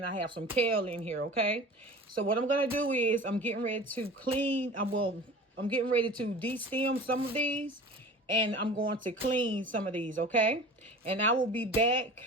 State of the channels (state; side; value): normal; both; correlation 0.39